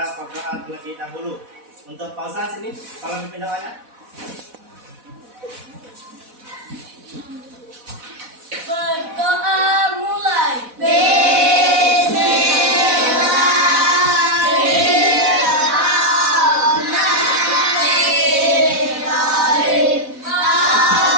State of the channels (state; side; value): late; left; 4.1 ms